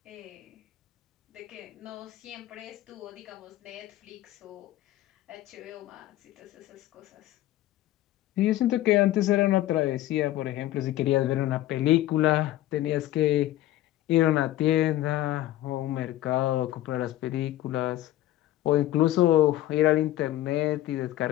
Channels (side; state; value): right; quieter; 14.5 dB